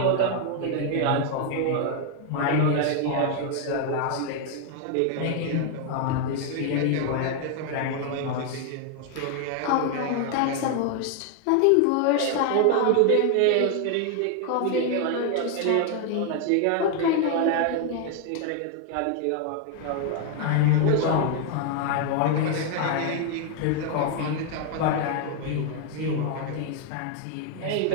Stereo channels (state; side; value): different; both; correlation 0.01